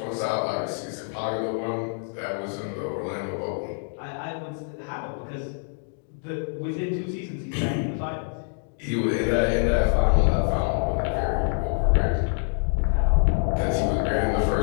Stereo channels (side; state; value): right; silent; 61 dB below the other